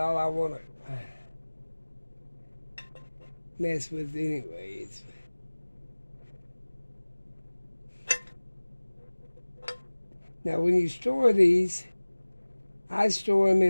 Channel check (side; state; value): both; inverted; correlation -1.00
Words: I want to mess with anyways. Now, when you store these, I store them